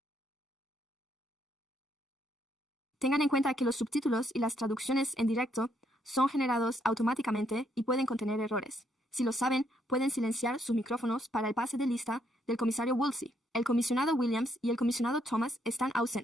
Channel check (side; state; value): both; normal; correlation 0.73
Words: Tengan en cuenta que los subtítulos y las traducciones en directo son generados automáticamente y pueden contener errores. Si lo saben, pueden silenciar sus micrófonos para el pase de lista del comisario Woolsey. El comisionado Williams y el comisionado Thomas están